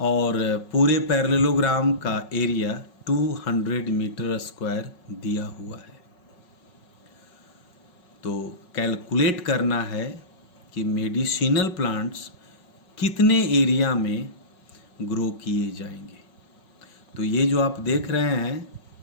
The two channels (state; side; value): late; right; 5.4 ms